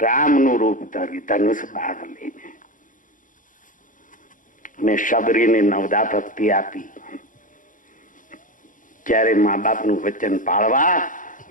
રૂપ ધર્યું, ધનુષ બાણ લઈને. મેં શબરીને નવદા ભક્તિ આપી. જ્યારે મા બાપનું વચન પાળવા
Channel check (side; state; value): right; late; 0.38 ms